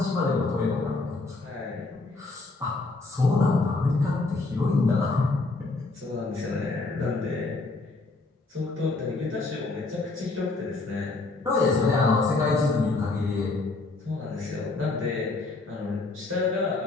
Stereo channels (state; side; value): quieter; right; 3.5 dB